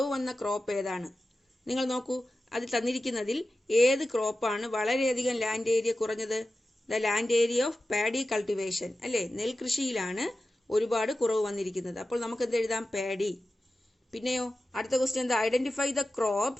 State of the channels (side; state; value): both; normal; correlation 0.94